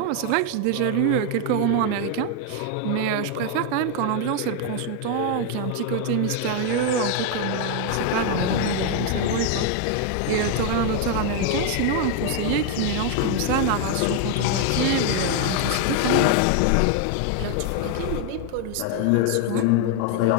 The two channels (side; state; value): both; different; correlation 0.00